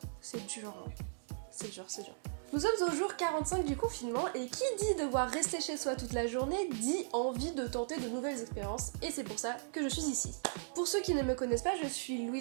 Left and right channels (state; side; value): silent; left; digital silence